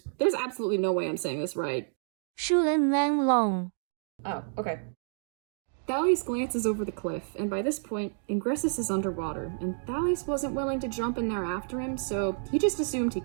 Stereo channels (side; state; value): left; silent; digital silence